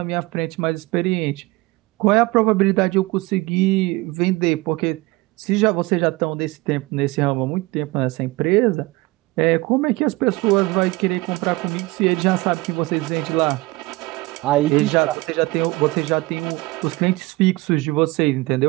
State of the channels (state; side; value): quieter; left; 22.0 dB